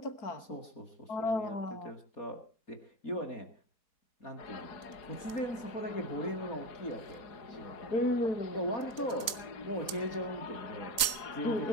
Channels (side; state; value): right; late; 4.0 ms